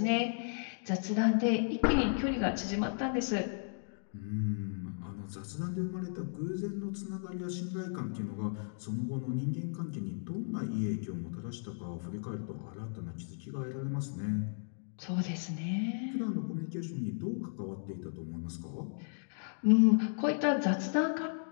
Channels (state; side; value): silent; right; digital silence